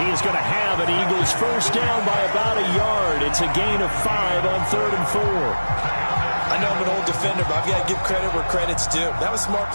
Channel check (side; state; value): both; inverted; correlation -1.00